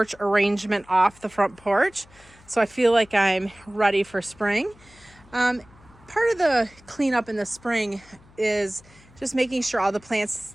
arrangement off the front porch, so I feel like I'm ready for spring. Part of the cleanup in the spring is just making sure all the plants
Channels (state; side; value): noise; left; hum, 26 dB below the sound